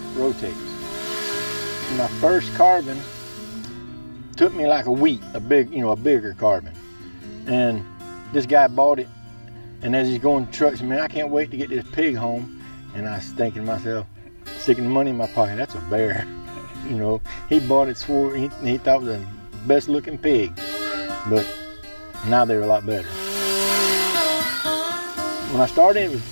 rotates. My first carbon took me like a week, a bigger carbon. And this guy bought it, and as he's going to trucks, man, I can't wait to get this pig home. And I was thinking to myself, sticking the money in my pocket, that's a bear. You know, he bought it, swore he thought it was the best looking pig. But now they're a lot better. When I started, it was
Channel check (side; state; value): both; inverted; correlation -1.00